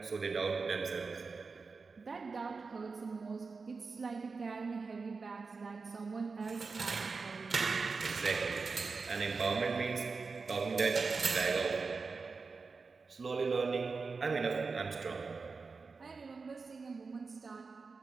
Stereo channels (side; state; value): left; quieter; 4.5 dB